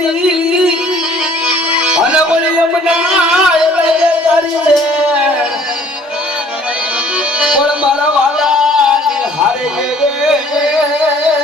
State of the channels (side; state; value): both; normal; correlation 0.56